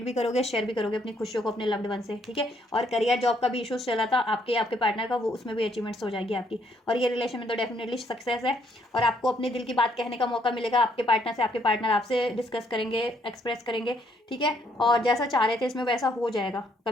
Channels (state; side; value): normal; both; correlation 0.70